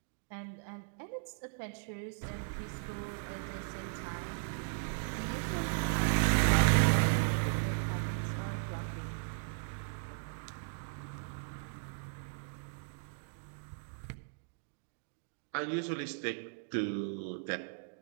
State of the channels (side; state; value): left; silent; digital silence